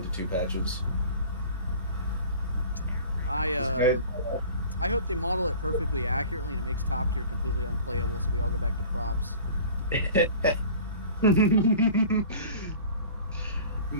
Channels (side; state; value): both; inverted; correlation -0.42